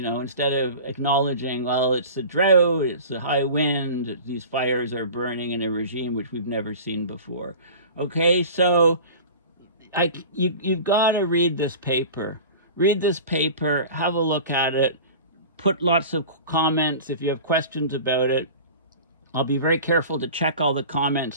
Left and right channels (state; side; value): inverted; both; correlation -0.38